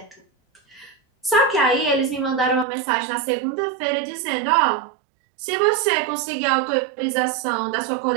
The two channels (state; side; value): drops out; left; at 2.7 s